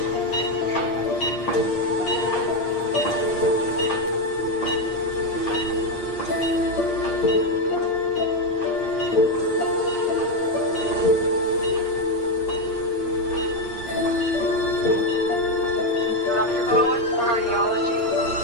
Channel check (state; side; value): late; right; 8.5 ms